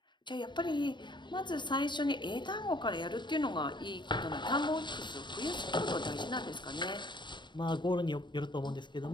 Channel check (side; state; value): right; late; 0.22 ms